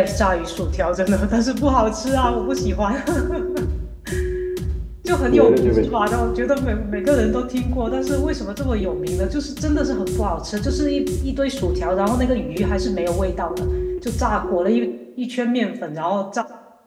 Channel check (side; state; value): both; identical; correlation 1.00